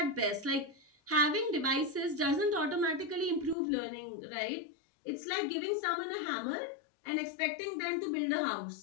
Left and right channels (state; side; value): drops out; right; at 3.6 s